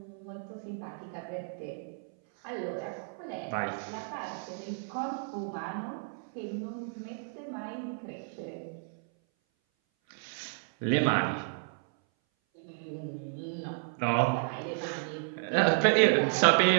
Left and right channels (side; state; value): left; silent; 56 dB below the other